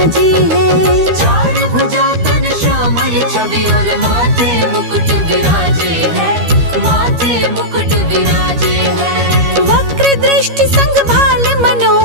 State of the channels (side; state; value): left; late; 13 ms